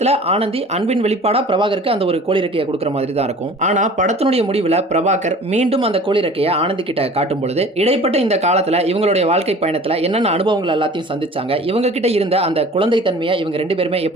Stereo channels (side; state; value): both; normal; correlation 0.44